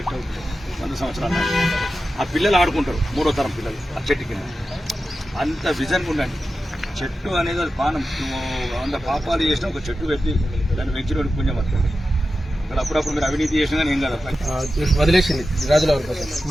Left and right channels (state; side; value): normal; both; correlation 0.92